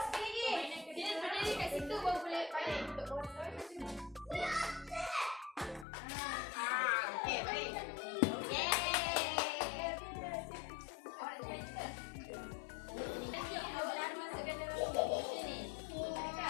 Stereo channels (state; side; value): drops out; right; at 5.9 s